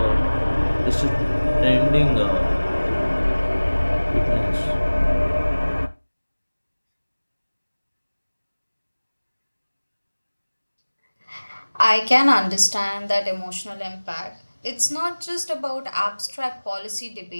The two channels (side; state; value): both; inverted; correlation -1.00